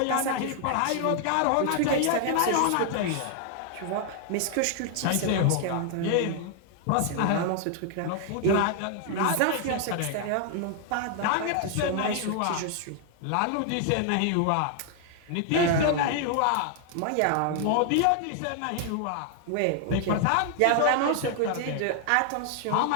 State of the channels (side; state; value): both; different; correlation 0.00